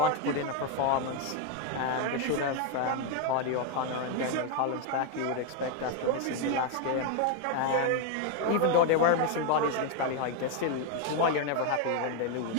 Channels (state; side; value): different; both; correlation 0.01